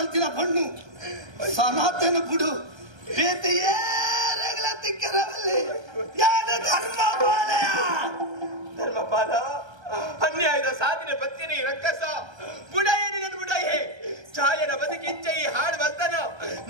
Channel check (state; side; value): late; left; 1.3 ms